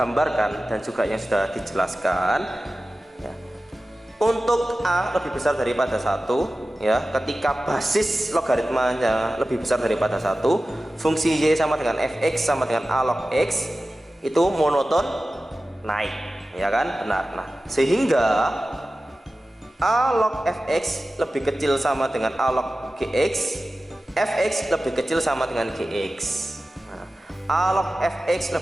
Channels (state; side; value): normal; both; correlation 0.95